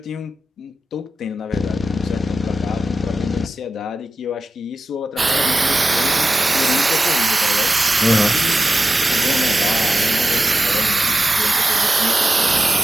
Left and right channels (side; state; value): both; normal; correlation 0.93